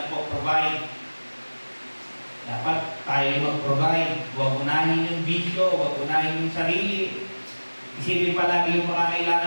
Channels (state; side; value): inverted; both; correlation -1.00